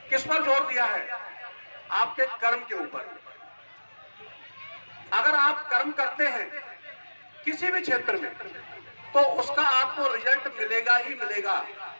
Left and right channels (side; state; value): both; inverted; correlation -1.00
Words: किस पर जोर दिया है? आपके कर्म के ऊपर। अगर आप कर्म करते हैं किसी भी क्षेत्र में, तो उसका आपको रिजल्ट मिलेगा ही मिलेगा,